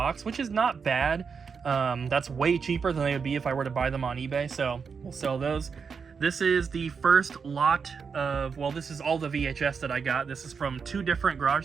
which is not bad. That's way cheaper than they would be if I were to buy them on eBay, so we'll sell those. This is the first lot of, well, this is all the VHS that I got. This is from 2 different garage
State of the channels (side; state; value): left; quieter; 5.8 dB